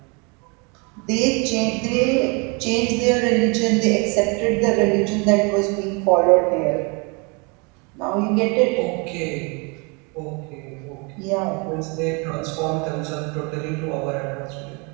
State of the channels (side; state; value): left; quieter; 31.2 dB